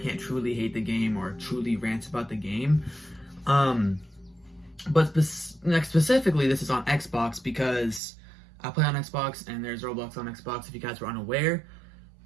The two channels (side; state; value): left; drops out; at 8.0 s